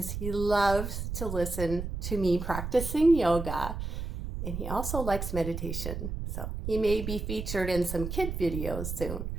he loves to listen to me practicing yoga, and he also likes meditation. So he may be featured in some kid videos soon.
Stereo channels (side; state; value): right; noise; rumble, 5 dB below the sound